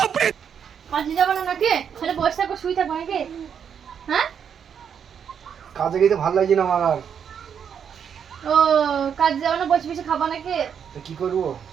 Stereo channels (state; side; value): quieter; left; 7.7 dB